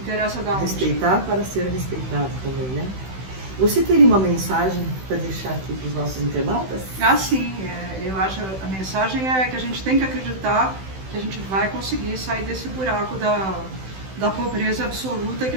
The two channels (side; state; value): left; late; 16 ms